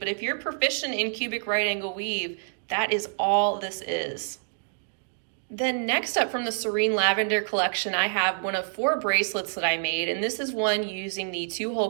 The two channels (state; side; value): silent; left; digital silence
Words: if you're proficient in cubic right angle weave, that is all this is. Then next up from the Serene Lavender collection, I have one of 4 bracelets that I made. And this is one using the